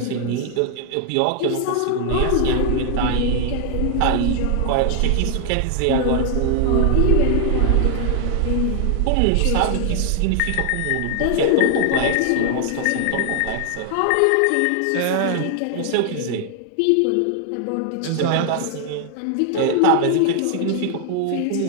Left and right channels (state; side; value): different; both; correlation 0.00